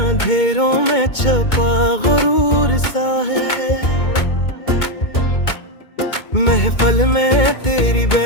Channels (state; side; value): late; right; 2.2 ms